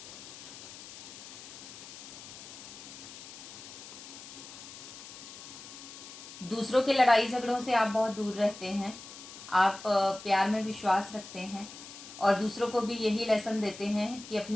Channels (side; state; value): left; noise; hiss, 14 dB below the sound